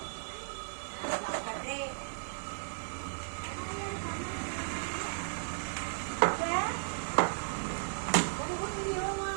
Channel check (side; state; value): left; silent; digital silence